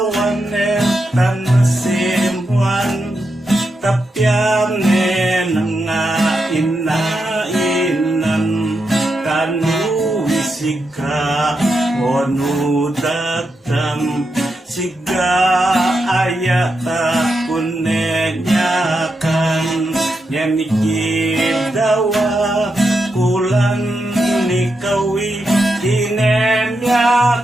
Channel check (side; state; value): both; normal; correlation 0.85